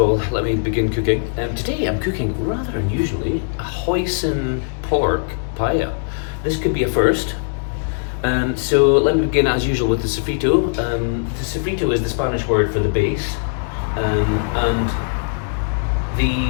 let me begin cooking. Today I'm cooking, rather unusually, a hoisin pork paella. This could be a first. So let me begin as usual with the sofrito. The sofrito is the Spanish word for the base, and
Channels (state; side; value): silent; right; digital silence